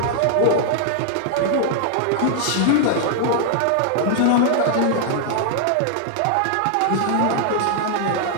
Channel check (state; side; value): different; both; correlation -0.01